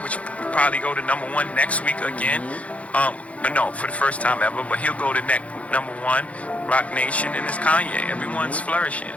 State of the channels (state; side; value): late; right; 0.065 ms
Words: will probably go to number one next week again. No, for the first time ever, but he'll go to number one. Rock Nation, and it's Kanye. Everyone's flourishing.